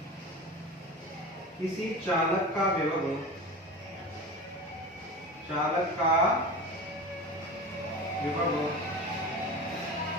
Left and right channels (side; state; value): both; normal; correlation 0.31